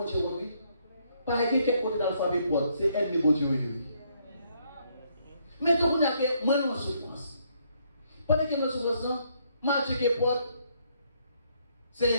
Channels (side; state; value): both; inverted; correlation -0.71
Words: Dieu honte, oui. Par exemple, quel côté dans l'alphabet porte, c'est elle qui bon Dieu oui. Mais donc, on a que moi, nous en souffrance. Pendant que nous souffrance, mal Dieu qui porte, c'est